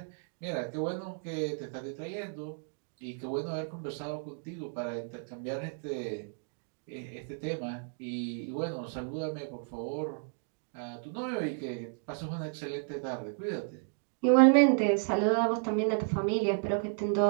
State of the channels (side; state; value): left; silent; 56 dB below the other